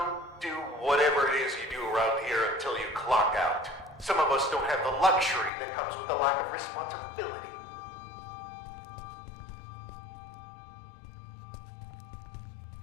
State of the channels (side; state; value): right; drops out; at 5.5 s